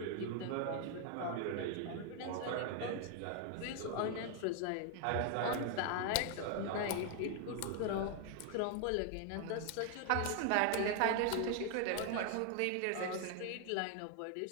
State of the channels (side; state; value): both; different; correlation 0.00